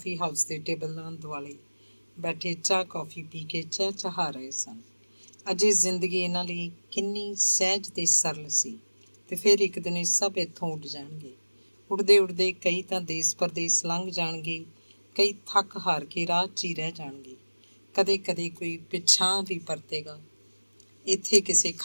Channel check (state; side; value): inverted; both; correlation -1.00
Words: ਹਾਊਸ ਦੇ ਟੇਬਲਾਂ ਦੁਆਲੇ ਬੈਠੇ ਚਾਹ ਕੌਫੀ ਪੀ ਕੇ ਚਹਿਚਹਾ ਰਹੇ ਸਨ। ਅਜੇ ਜ਼ਿੰਦਗੀ ਇਹਨਾਂ ਲਈ ਕਿੰਨੀ ਸਹਿਜ ਤੇ ਸਰਲ ਸੀ। ਤੇ ਫਿਰ ਇੱਕ ਦਿਨ ਇਹ ਸਭ ਇੱਥੋਂ ਉੱਡ ਜਾਣਗੇ। ਉੱਡਦੇ ਉੱਡਦੇ ਕਈ ਤਾਂ ਦੇਸ ਪਰਦੇਸ ਲੰਘ ਜਾਣਗੇ, ਕਈ ਥੱਕ ਹਾਰ ਕੇ ਰਾਹ 'ਚ ਹੀ ਰਹਿ ਜਾਣਗੇ। ਕਦੇ ਕਦੇ ਕੋਈ ਪਿਛਾਂਹ ਵੀ ਪਰਤੇਗਾ। ਇੱਥੇ ਕਿਸੇ